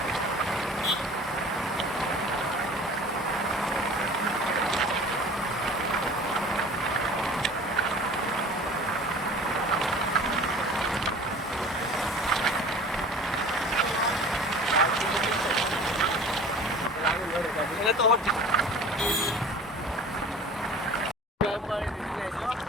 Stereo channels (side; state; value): both; normal; correlation 0.43